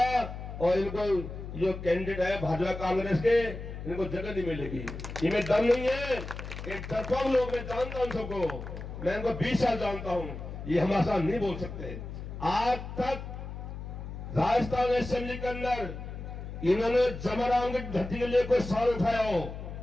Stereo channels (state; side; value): noise; left; hum, 9 dB below the sound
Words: और इनको जो कैंडिडेट है भाजपा कांग्रेस के, इनको जगह नहीं मिलेगी। इनमें दम नहीं है, एक डरपोक लोग, मैं जानता हूं सबको, मैं इनको 20 साल जानता हूं, ये हमारे साथ नहीं बोल सकते। आज तक राजस्थान असेंबली के अंदर इन्होंने जमराम की धरती के लिए कोई सवाल उठाया हो,